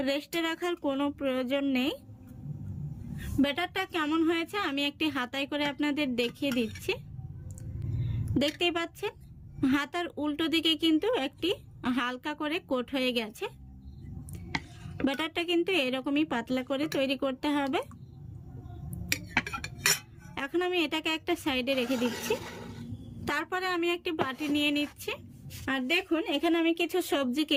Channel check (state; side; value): identical; both; correlation 1.00